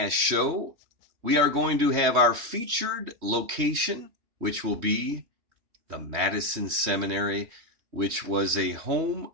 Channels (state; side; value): late; left; 3.2 ms